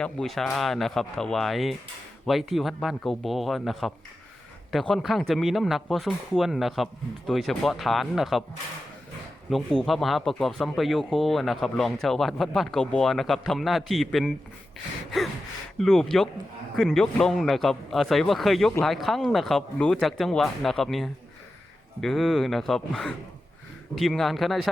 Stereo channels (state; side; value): normal; both; correlation 0.92